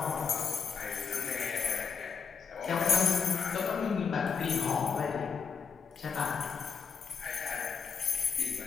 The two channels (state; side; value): quieter; right; 6.2 dB